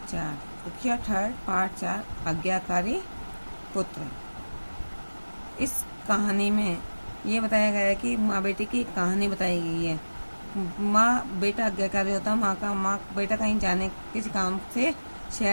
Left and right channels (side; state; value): both; inverted; correlation -1.00